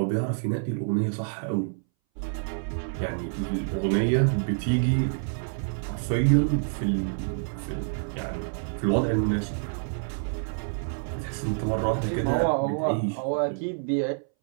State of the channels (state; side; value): silent; left; 60 dB below the other